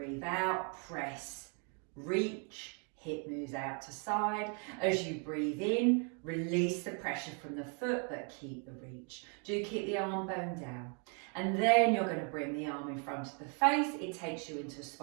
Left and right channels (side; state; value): left; quieter; 38.9 dB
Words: out, press, reach, hip moves out to side. As you breathe in, release the pressure from the foot, but keep the reach. Do keep the arm bone down. And then you're going to bring the arm in front of the face. It takes you into